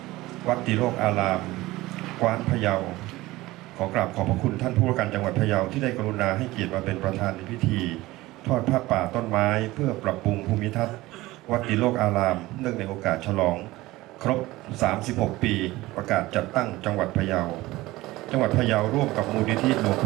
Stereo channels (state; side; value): quieter; left; 18.7 dB